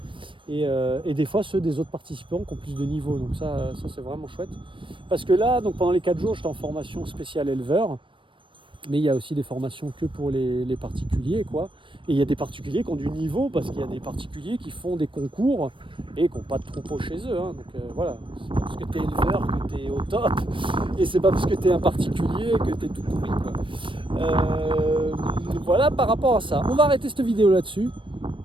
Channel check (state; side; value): late; left; 0.25 ms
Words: Et des fois ceux des autres participants qui ont plus de niveau. Donc ça c'est vraiment chouette. Parce que là, donc pendant les 4 jours, j'étais en formation spéciale éleveur. Mais il y a aussi des formations que pour les particuliers, quoi. Et il y a des particuliers qui ont du niveau, parce qu'il y a des particuliers qui font des concours et qui n'ont pas de troupeau chez eux. Hein. Donc voilà, c'est pas parce que tu es éleveur que tu es au top, et c'est pas parce que tu es un particulier que tu es tout pourri, quoi. Voilà par rapport à ça. On va arrêter cette vidéo là-dessus.